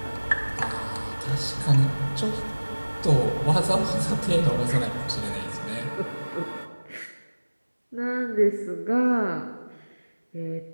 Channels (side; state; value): both; inverted; correlation -1.00